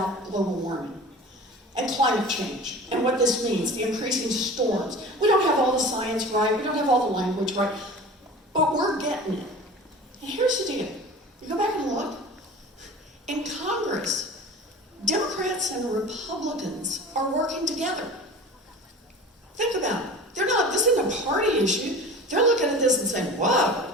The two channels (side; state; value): both; normal; correlation 0.38